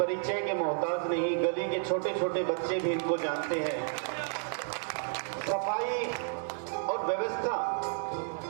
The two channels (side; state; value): left; silent; 57 dB below the other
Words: के मोहताज नहीं, गली के छोटे छोटे बच्चे भी इनको जानते हैं। सफाई और व्यवस्था